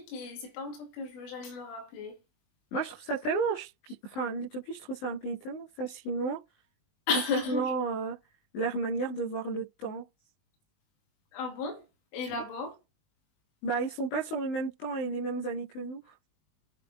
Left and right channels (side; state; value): right; late; 20 ms